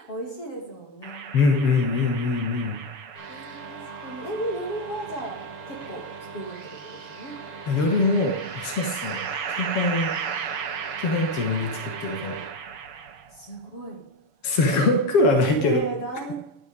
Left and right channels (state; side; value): late; right; 7.4 ms